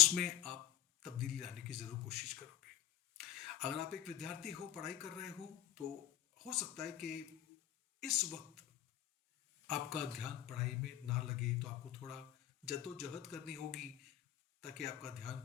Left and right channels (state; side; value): quieter; right; 12.7 dB